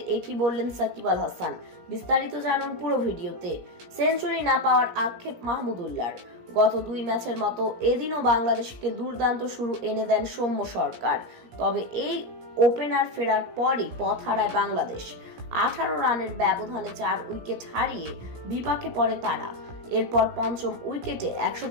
একই বললেন সাকিব আল হাসান। বিস্তারিত জানুন পুরো ভিডিওতে। সেঞ্চুরি না পাওয়ার আক্ষেপ মাহমুদুল্লাহর। গত 2 ম্যাচের মতো এদিনও বাংলাদেশকে দুর্দান্ত শুরু এনে দেন সৌম্য সরকার। তবে এই ওপেনার ফেরার পরই পথ হারায় বাংলাদেশ। 18 রানের ব্যবধানে 4 উইকেট হারিয়ে বিপাকে পড়ে তারা। এরপর পঞ্চম উইকেটে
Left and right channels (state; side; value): late; left; 17 ms